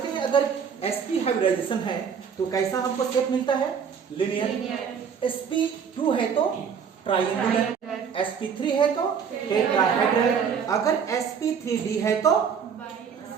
हैं। अगर sp हाइब्रिडाइजेशन है तो कैसा हमको शेप मिलता है? लीनियर। sp2 है तो ट्राइएंगुलर, sp3 है तो टेट्राहेड्रल, अगर sp3d है तो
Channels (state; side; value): quieter; left; 6.9 dB